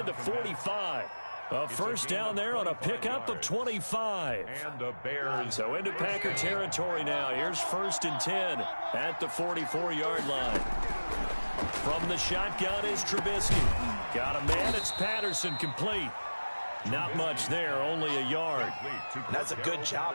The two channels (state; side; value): inverted; both; correlation -1.00